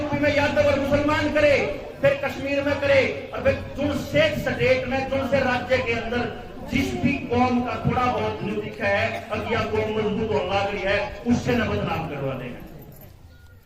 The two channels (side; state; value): both; identical; correlation 1.00